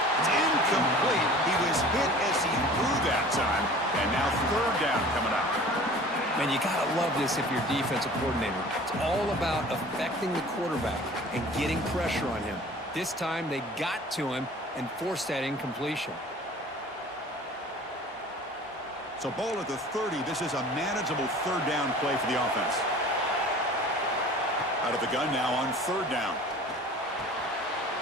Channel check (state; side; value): normal; both; correlation 0.44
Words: It's incomplete. He was hit as he threw that time, and now 3rd down coming up. Man, you got to love this if you're defensive coordinator. It's all about affecting the quarterback and getting pressure on him. This time, they got to him and forced that incompletion. So ball at the 30. This is a manageable 3rd down play for the offense. Out of the gun now on 3rd down.